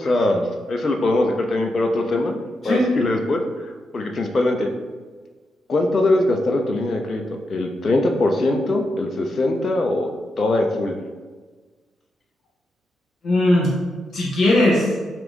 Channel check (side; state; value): both; normal; correlation 0.86